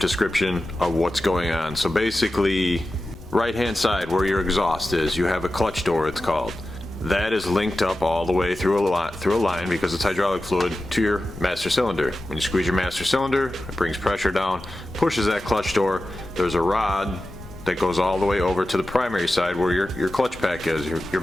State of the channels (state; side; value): noise; left; rumble, 19 dB below the sound